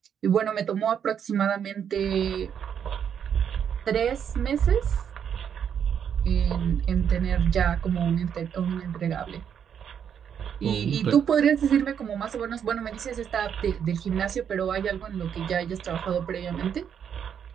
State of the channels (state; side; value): quieter; left; 8.2 dB